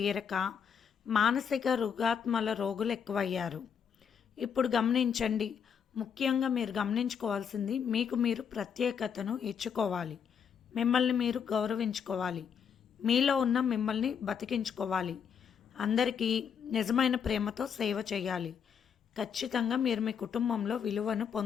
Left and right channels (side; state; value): right; quieter; 7.3 dB